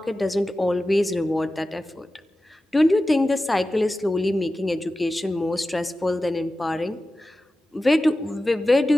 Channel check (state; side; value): normal; both; correlation 0.94